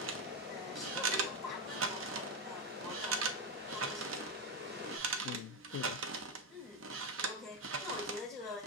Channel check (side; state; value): both; normal; correlation 0.10